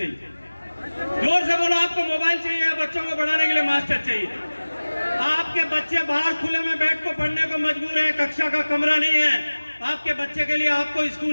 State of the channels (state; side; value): inverted; both; correlation -1.00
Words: जोर से बोलो, आपको मोबाइल चाहिए या बच्चों को पढ़ाने के लिए मास्टर चाहिए? आपके बच्चे बाहर खुले में बैठ को पढ़ने को मजबूर है, कक्षा का कमरा नहीं है। आपके बच्चे के लिए आपको